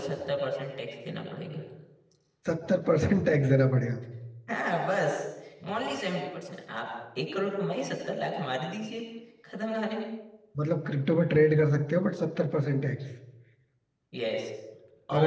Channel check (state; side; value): identical; both; correlation 1.00